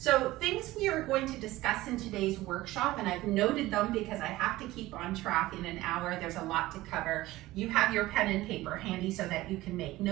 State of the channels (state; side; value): quieter; left; 17.6 dB